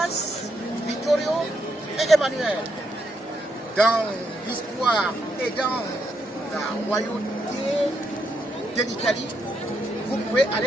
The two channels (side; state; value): both; normal; correlation 0.79